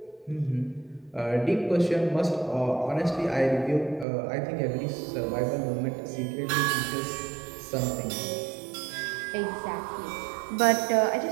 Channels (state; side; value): drops out; left; at 4.0 s